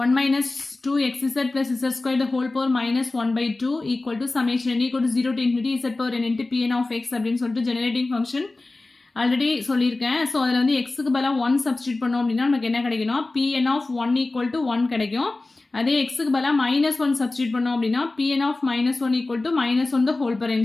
1 - 2xz + z² the whole power -1/2 equal to summation n equal to 0 to infinity z power n into Pn of x அப்படின்னு சொல்லிட்டு generating function already சொல்லியிருக்கேன். So அதில் வந்து எக்ஸுக்கு பதிலாக 1 சப்ஸ்டியூட் பண்ணோம் அப்படின்னா நமக்கு என்ன கிடைக்கணும் Pn of 1 equal to 1 கிடைக்கும். அதே எக்ஸுக்கு பதிலாக -1 சப்ஸ்டியூட் பண்ணோம் அப்படின்னா Pn of -1 equal to -1 the whole power n.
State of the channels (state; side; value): quieter; right; 3.2 dB